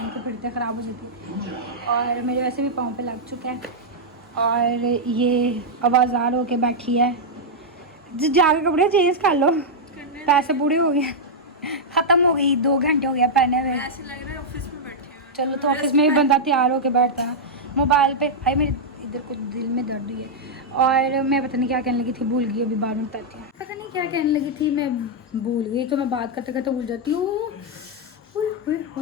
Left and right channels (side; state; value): both; normal; correlation -0.05